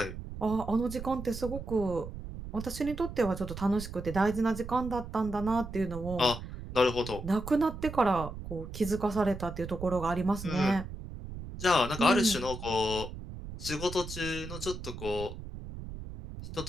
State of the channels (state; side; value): noise; right; rumble, 10 dB below the sound